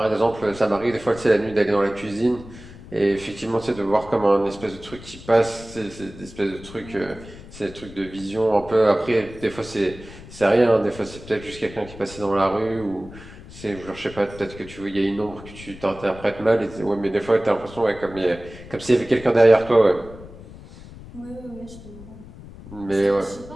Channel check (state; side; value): noise; left; rumble, 17 dB below the sound